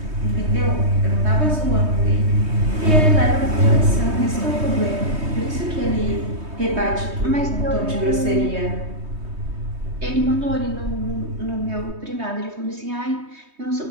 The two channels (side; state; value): left; late; 3.2 ms